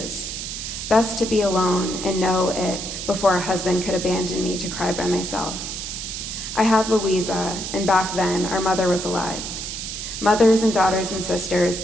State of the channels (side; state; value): right; noise; hiss, 6 dB below the sound